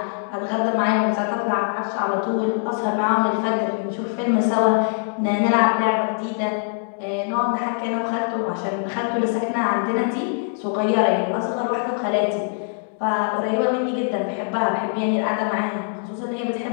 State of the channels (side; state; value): right; silent; digital silence